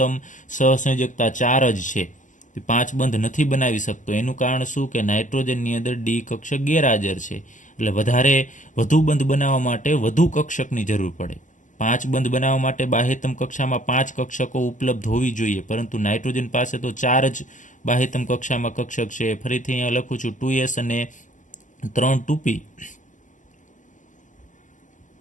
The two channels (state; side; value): late; right; 0.37 ms